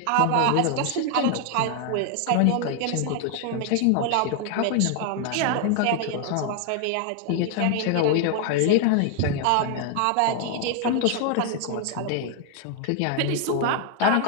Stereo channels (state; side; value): different; both; correlation 0.00